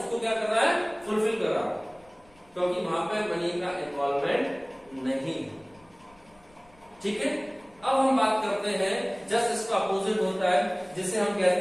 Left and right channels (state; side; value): noise; left; rumble, 29 dB below the sound